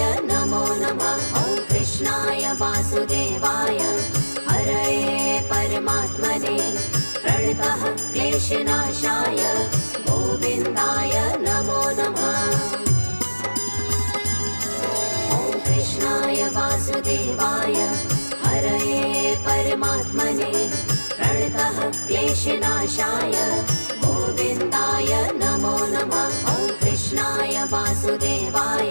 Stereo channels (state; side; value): inverted; both; correlation -1.00